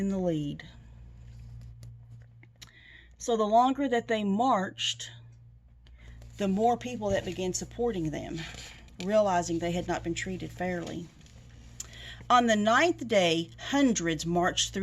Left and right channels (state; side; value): identical; both; correlation 1.00